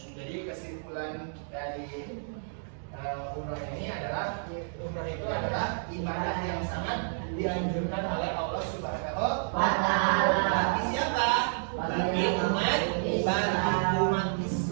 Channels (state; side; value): silent; left; digital silence